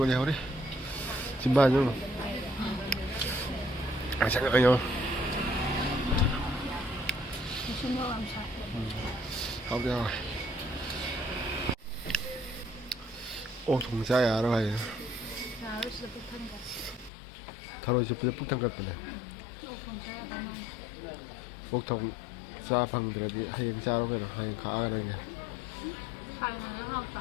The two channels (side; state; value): right; drops out; at 17.1 s